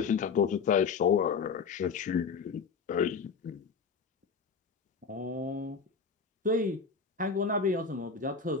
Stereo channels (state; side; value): quieter; right; 5.5 dB